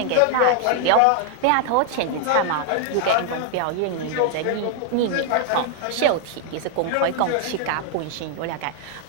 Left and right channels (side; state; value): both; different; correlation 0.00